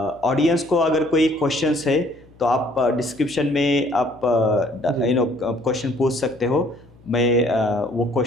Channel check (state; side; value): noise; left; hum, 26 dB below the sound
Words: ऑडियंस को अगर कोई क्वेश्चंस है तो आप डिस्क्रिप्शन में आप क्वेश्चन पूछ सकते हो, मैं वो